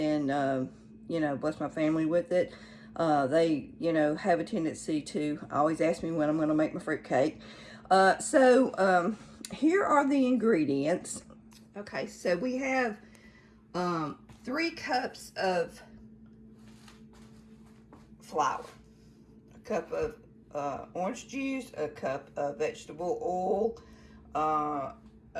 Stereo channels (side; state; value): both; identical; correlation 1.00